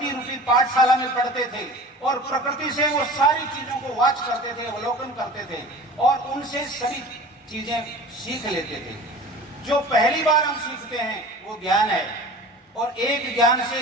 रूपी पाठशाला में पढ़ते थे और प्रकृति से वो सारी चीजों को वाच करते थे, अवलोकन करते थे और उनसे सभी चीजें सीख लेते थे। जो पहली बार हम सीखते हैं वो ज्ञान है, और एक ज्ञान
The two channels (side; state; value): both; normal; correlation 0.39